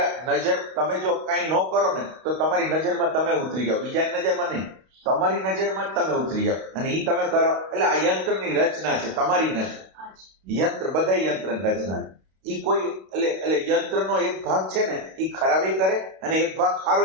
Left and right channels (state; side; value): late; left; 32 ms